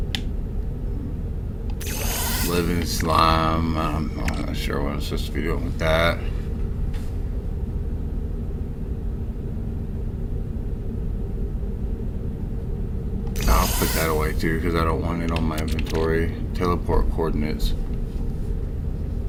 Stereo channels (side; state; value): both; identical; correlation 1.00